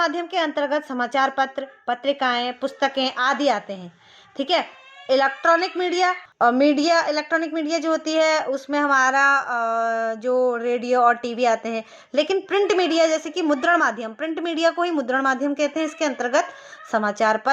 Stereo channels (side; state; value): both; identical; correlation 1.00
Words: के अंतर्गत समाचार पत्र, पत्रिकाएं, पुस्तकें आदि आते हैं। ठीक है। इलेक्ट्रॉनिक मीडिया जो होती है उसमें हमारा जो रेडियो और टीवी आते हैं। लेकिन प्रिंट मीडिया जैसे कि मुद्रण माध्यम, प्रिंट मीडिया को ही मुद्रण माध्यम कहते हैं। इसके अंतर्गत समाचार